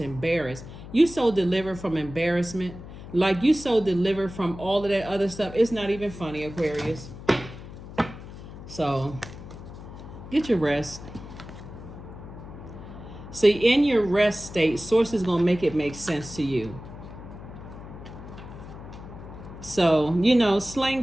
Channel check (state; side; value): noise; left; hum, 14 dB below the sound